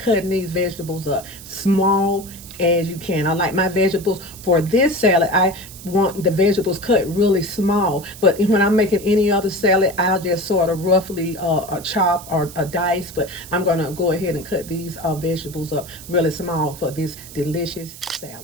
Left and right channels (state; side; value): noise; right; hiss, 16 dB below the sound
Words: these vegetables up small as you can. I like my vegetables for this salad. I want the vegetables cut really small, but when I'm making any other salad, I'll just sort of roughly chop or dice, but I'm going to go ahead and cut these vegetables up really small for this delicious